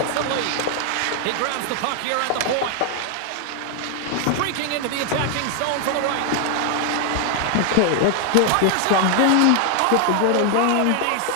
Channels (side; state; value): both; different; correlation 0.00